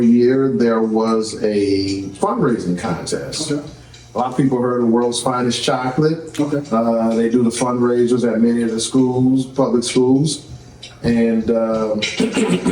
year, there was a fundraising contest. Okay. A lot of people heard of World's Finest Chocolate. Okay. They do the fundraisers at many of the schools, public schools. And there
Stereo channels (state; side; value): identical; both; correlation 1.00